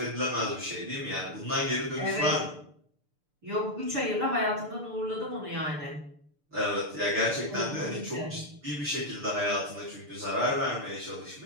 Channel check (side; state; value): left; late; 6.8 ms